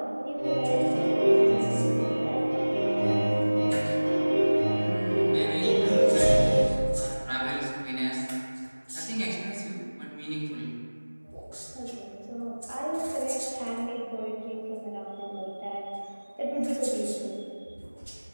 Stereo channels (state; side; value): inverted; both; correlation -1.00